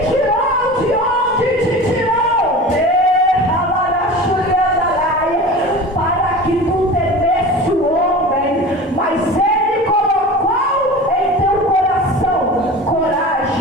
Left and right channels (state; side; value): normal; both; correlation 0.35